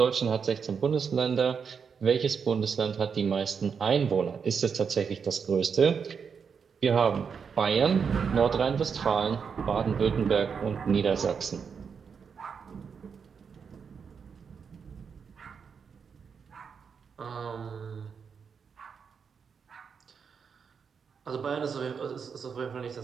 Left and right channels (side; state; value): left; quieter; 6.3 dB